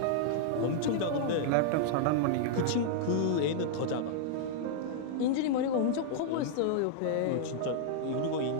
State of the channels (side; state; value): both; different; correlation -0.01